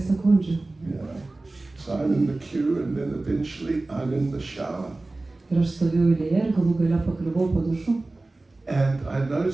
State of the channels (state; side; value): quieter; left; 3.1 dB